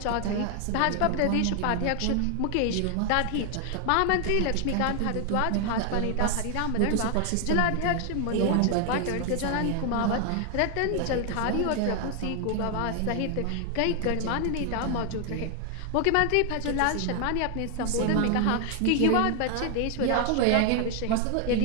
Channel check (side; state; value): both; different; correlation 0.00